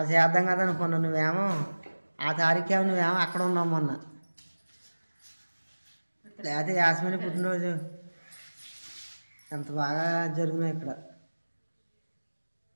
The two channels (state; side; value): inverted; both; correlation -1.00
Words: చేద్దాం కదా అనుకున్నాను. నువ్వేమో ఆ తారీఖేమో నువ్వేమో అక్కడ ఉన్నావు మొన్న. లేకపోతే యాస్మిని పుట్టినరోజు ఎంత బాగా జరుగుతున్నాయి ఇక్కడ.